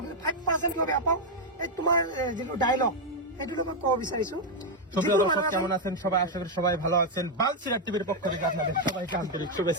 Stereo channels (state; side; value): normal; both; correlation 0.01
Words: 5% কিয় বেয়া পাও এই তোমাৰ যেটো ডায়লগ এটো মই কব বিচাৰিছো কেমন আছেন সবাই আশা করি সবাই ভালো আছেন বালচিরাট টিভির পক্ষ থেকে আপনাদের সবাইকে আন্তরিক